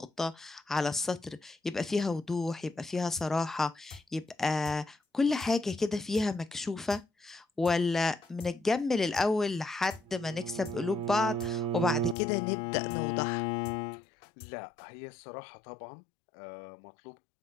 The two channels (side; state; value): right; drops out; at 12.2 s